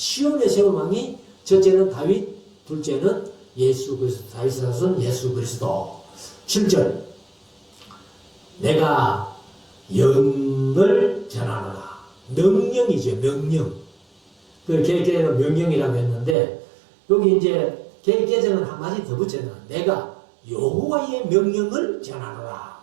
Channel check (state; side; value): drops out; left; at 16.4 s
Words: 세운 왕이 첫째는 다윗, 둘째는 예수 그리스도, 다윗의 자손 예수 그리스도. 7절 내가 영을 전하노라. 명령이죠. 명령. 그 개혁개정은 명령이라고 했는데 여기 이제 개혁개정은 한 마디 더 붙여놔. 내가 여호와의 명령을 전하노라.